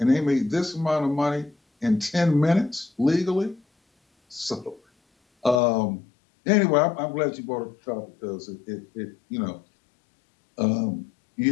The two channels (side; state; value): right; drops out; at 5.6 s